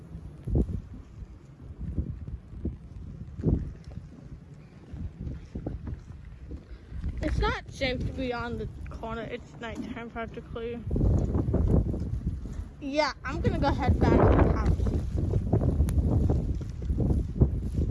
It's not safe to be on the corner. It's nighttime practically. Yeah, I'm gonna go head back to the house.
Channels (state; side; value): identical; both; correlation 1.00